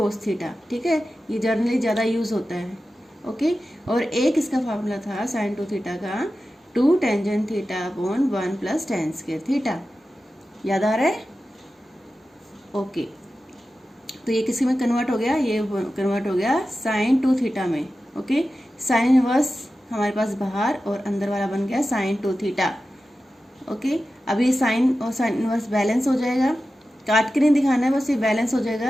थीटा। ठीक है, ये जनरली ज़्यादा यूज होता है। ओके, और एक इसका फार्मूला था साइन 2 थीटा का 2 tangent theta upon 1 plus tan square theta. याद आ रहा है? ओके, तो ये किसी में कन्वर्ट हो गया, ये कन्वर्ट हो गया साइन 2 थीटा में। ओके, साइन इनवर्स हमारे पास बाहर और अंदर वाला बन गया साइन 2 थीटा। ओके, अब ये साइन और साइन इनवर्स बैलेंस हो जाएगा, काट के नहीं दिखाना है, बस ये बैलेंस हो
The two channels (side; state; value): both; normal; correlation 0.93